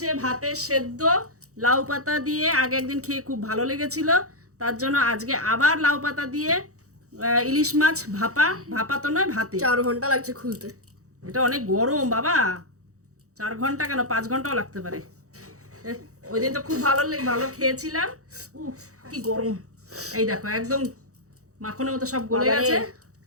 ভাতের সেদ্ধ লাউ পাতা দিয়ে, আগে একদিন খেয়ে খুব ভালো লেগেছিল, তার জন্য আজকে আবার লাউ পাতা দিয়ে ইলিশ মাছ ভাপা। ভাপা তো নয়, ভাতে। 4 ঘন্টা লাগছে খুলতে। এটা অনেক গরম বাবা, 4 ঘন্টা কেন 5 ঘন্টাও লাগতে পারে। ওই দিন তো খুব ভালো খেয়েছিলাম। কি গরম, এই দেখো একদম মাখনের মতো সব গলে গেছে।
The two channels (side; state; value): left; late; 0.65 ms